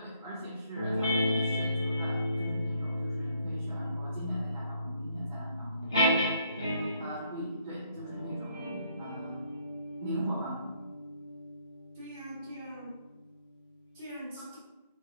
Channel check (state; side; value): inverted; both; correlation -0.71